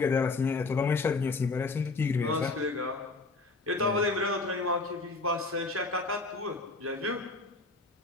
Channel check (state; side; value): quieter; right; 3.6 dB